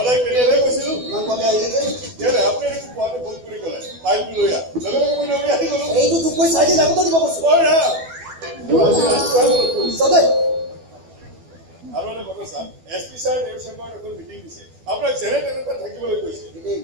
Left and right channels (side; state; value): left; late; 12 ms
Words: কেতিয়ালৈ গৈছিলো ইমান কমে আহিলে যে কেলে আপুনি দেখোন পোৱাতে ফোন কৰি ক'লে ফাইলটো লৈ আহ লগে লগে মই দৌৰি আহি গ'লো এইটো তোক মই 4 দিন আগতে দিব কৈছো চবে আৰু এটা কথা ছাৰ এছপি ছাৰ এই চেম্বাৰত এখন মিটিং দিছে আপোনাক যেনে তেনেকৈ থাকিবলৈ কৈছে